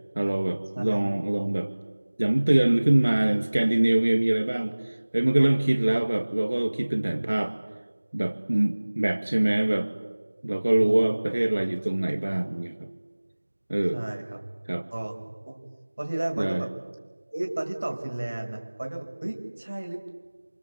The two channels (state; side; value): inverted; both; correlation -1.00